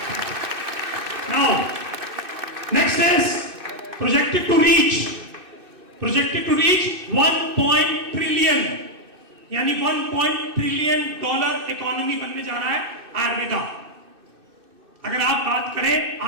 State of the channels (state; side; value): late; left; 2.6 ms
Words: Now, next is projected to reach 1 trillion, यानी 1 ट्रिलियन डॉलर इकोनॉमी बनने जा रहा है आयुर्वेदा। अगर आप बात करें